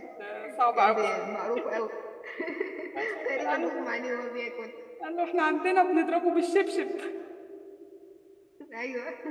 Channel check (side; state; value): both; identical; correlation 1.00